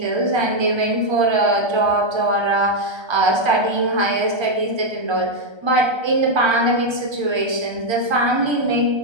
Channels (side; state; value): left; late; 1.3 ms